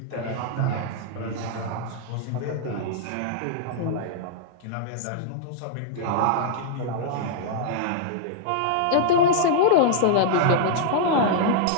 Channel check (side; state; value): both; different; correlation -0.01